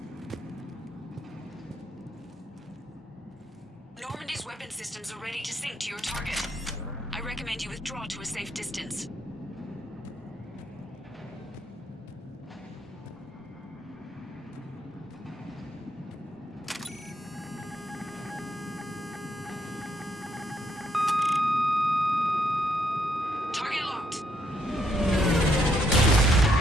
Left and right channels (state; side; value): normal; both; correlation 0.74